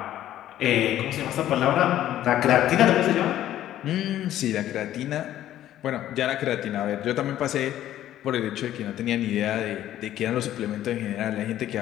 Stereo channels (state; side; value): quieter; right; 12.6 dB